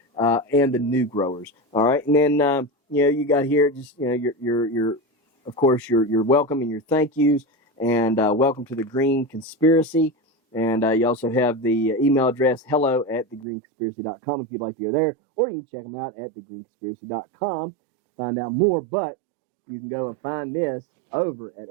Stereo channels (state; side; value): drops out; left; at 13.5 s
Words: and the new growers. All right, and then you got here just your of course your welcome and your thank yous, and welcome to the Green Conspiracy. And you also have the email address hello@thegreenconspiracy.com if you'd like to go there, or you can check them out at thegreenconspiracy.com to find out more. But you can go and find this over at